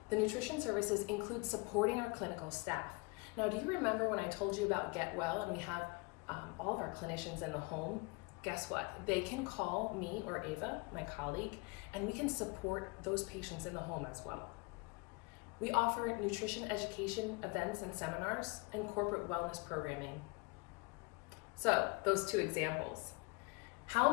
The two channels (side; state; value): right; quieter; 27.8 dB